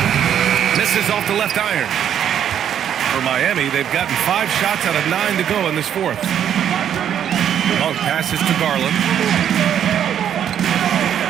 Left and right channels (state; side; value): quieter; left; 9.5 dB